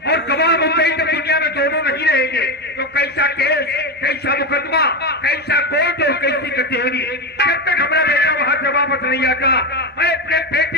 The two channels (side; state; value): both; normal; correlation 0.15